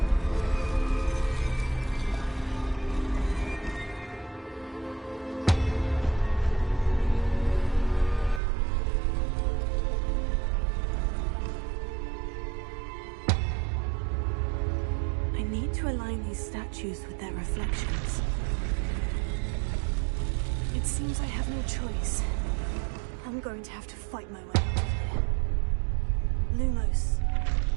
Statues with their reflections. It seems I have no choice. I'm going to have to fight my way out of here. Lumos.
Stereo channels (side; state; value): left; drops out; at 8.4 s